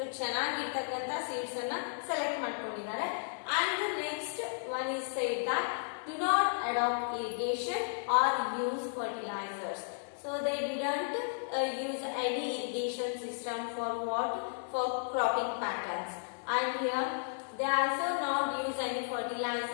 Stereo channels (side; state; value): right; silent; digital silence